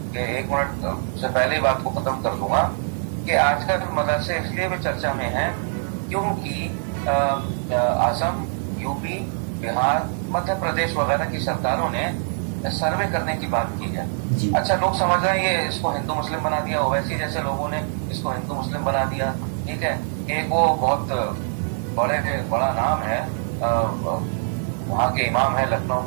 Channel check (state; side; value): silent; left; digital silence